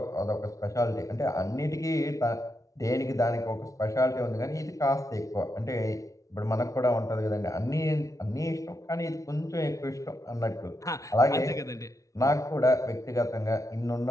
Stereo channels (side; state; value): right; late; 0.16 ms